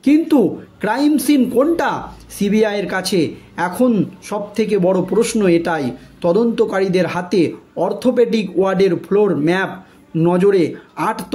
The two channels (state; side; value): identical; both; correlation 1.00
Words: কিন্তু ক্রাইম সিন কোনটা সিবিআইয়ের কাছে? এখন সবথেকে বড় প্রশ্ন এটাই। তদন্তকারীদের হাতে অর্থোপেডিক ওয়ার্ডের ফ্লোর ম্যাপ নজরে। 8